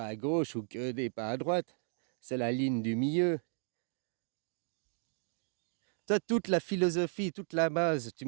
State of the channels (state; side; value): silent; left; 55 dB below the other